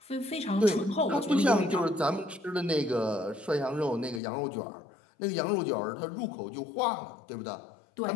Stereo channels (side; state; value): right; drops out; at 4.2 s